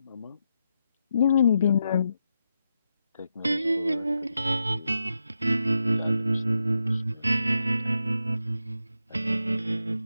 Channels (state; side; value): inverted; both; correlation -0.85